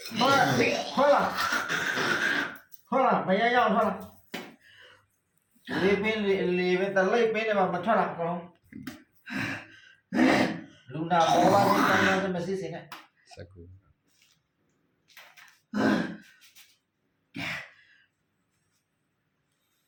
ထွက်လာမရရောက်ထွက်လာလေးပင်းတလိပ်ပင်းတွေမှာမထွက်လာကောင်းလူနာပေါ်လာတဲ့ကံနဲ့မရှိစင်းနဲ့စကူ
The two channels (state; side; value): identical; both; correlation 1.00